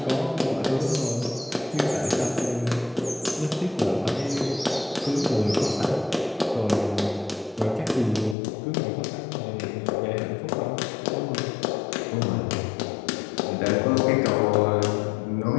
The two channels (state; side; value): drops out; right; at 8.3 s